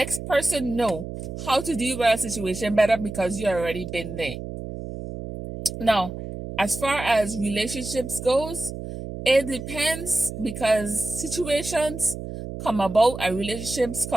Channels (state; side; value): noise; right; hum, 8 dB below the sound